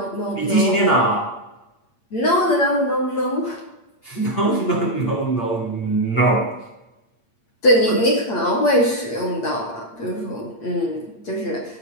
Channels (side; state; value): right; late; 8.6 ms